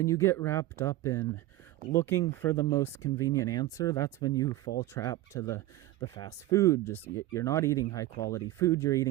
you get wrapped up in looking for the most convenient answer, that's when you fall trap to the fast food. Just you're not eating high quality food, you're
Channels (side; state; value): left; quieter; 16.2 dB